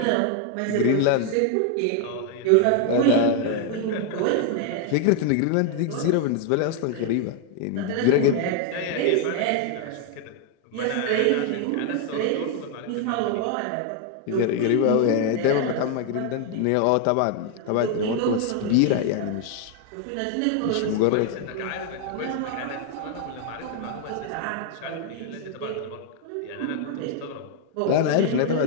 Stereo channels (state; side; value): different; both; correlation 0.00